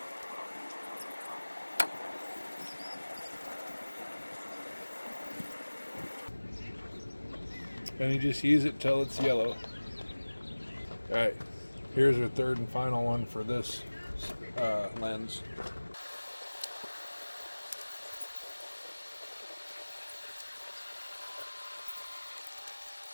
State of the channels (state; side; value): inverted; both; correlation -1.00